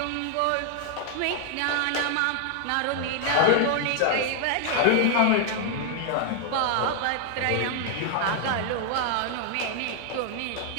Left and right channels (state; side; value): different; both; correlation 0.00